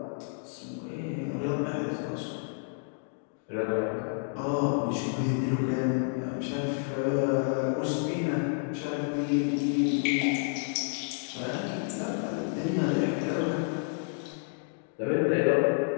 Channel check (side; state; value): right; silent; digital silence